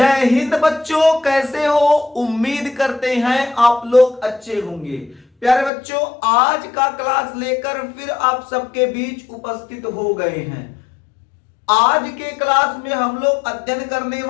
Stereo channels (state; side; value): drops out; right; at 5.7 s